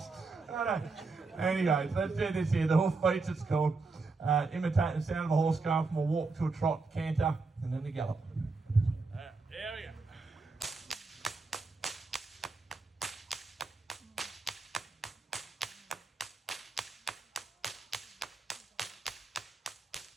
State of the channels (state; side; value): quieter; left; 3.9 dB